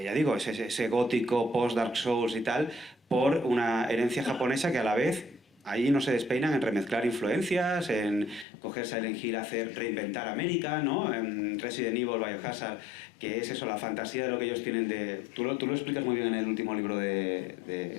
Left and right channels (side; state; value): right; drops out; at 8.5 s